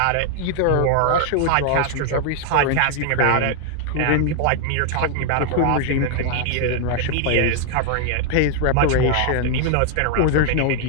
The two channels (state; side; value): different; both; correlation 0.00